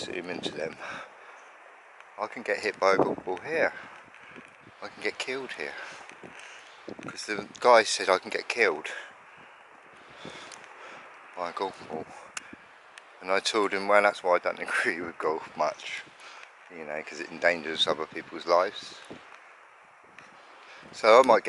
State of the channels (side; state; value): both; identical; correlation 1.00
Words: zoom into them. I can get hit by a golf ball here. I can get killed here. Because the guy said I can get killed by a golf ball. And I told him, well, that's why I don't agree with golf much. You know, because it endangers other people's lives. So I might